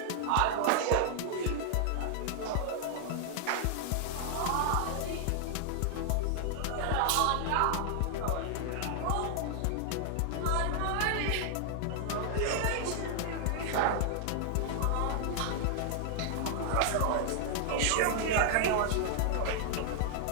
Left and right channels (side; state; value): both; different; correlation 0.00